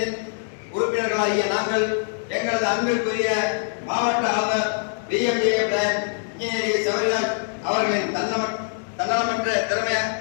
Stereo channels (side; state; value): right; silent; digital silence